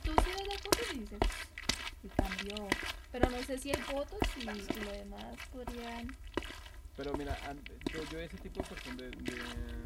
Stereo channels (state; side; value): identical; both; correlation 1.00